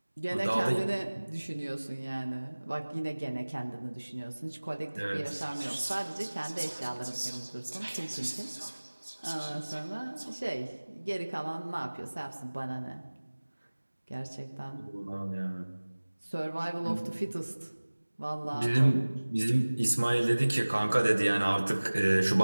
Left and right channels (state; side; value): inverted; both; correlation -1.00